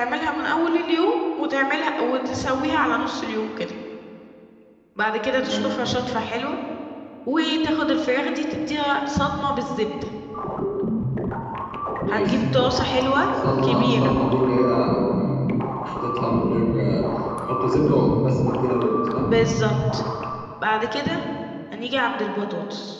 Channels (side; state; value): both; identical; correlation 1.00